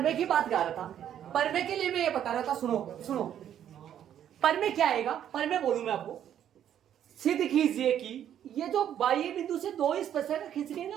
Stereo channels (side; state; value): left; quieter; 10.2 dB